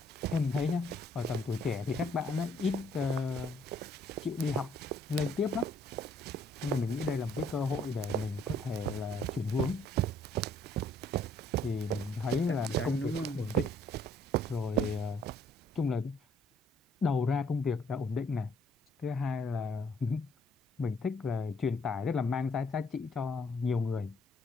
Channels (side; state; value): both; normal; correlation 0.64